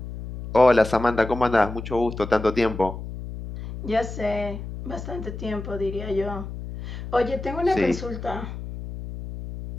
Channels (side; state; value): left; noise; hum, 9 dB below the sound